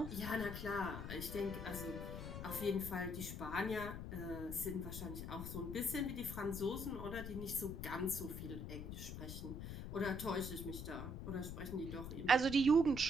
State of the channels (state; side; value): noise; left; rumble, 6 dB below the sound